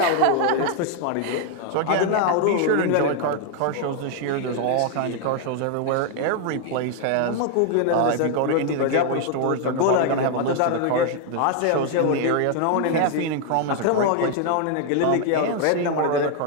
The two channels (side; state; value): both; different; correlation 0.00